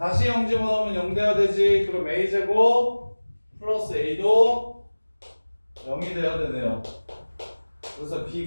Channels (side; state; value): both; inverted; correlation -1.00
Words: 0 집어넣으면 0 돼야 되지. 그럼 a제곱 플러스 a도 0이 돼야 되네요. 그래서